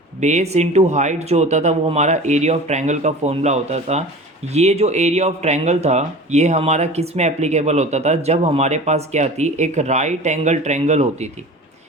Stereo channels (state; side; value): normal; both; correlation 0.37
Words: Base into height जो होता था वो हमारा एरिया ऑफ ट्रायंगल का फॉर्मूला होता था। ये जो एरिया ऑफ ट्रायंगल था ये हमारा किस में एप्लीकेबल होता था? जब हमारे पास क्या थी, एक राइट एंगल ट्रायंगल होती थी।